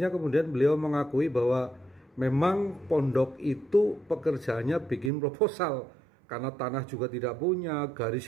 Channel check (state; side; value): drops out; left; at 5.1 s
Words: kemudian beliau mengakui bahwa memang pondok itu pekerjaannya bikin proposal. Karena tanah juga tidak punya,